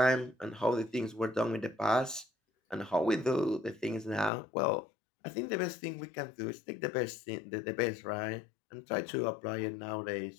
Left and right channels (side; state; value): right; drops out; at 4.3 s